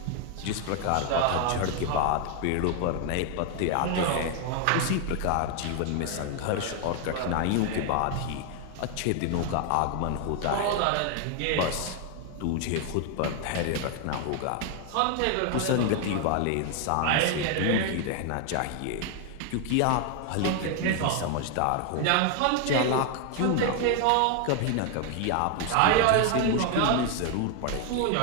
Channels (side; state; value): both; different; correlation 0.01